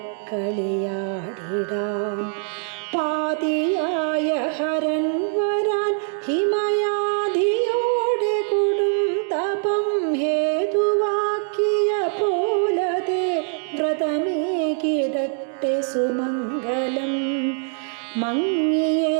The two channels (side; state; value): left; silent; 59 dB below the other